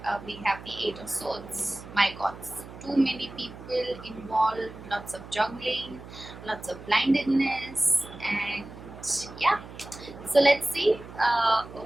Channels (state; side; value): noise; right; hum, 15 dB below the sound